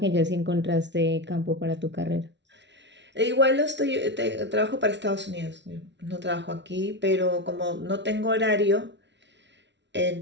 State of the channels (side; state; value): left; late; 0.51 ms